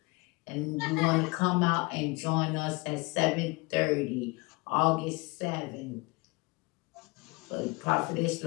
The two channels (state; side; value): quieter; right; 25.8 dB